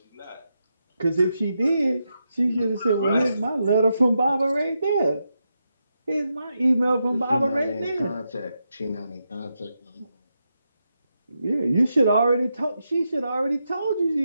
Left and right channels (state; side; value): inverted; both; correlation -0.85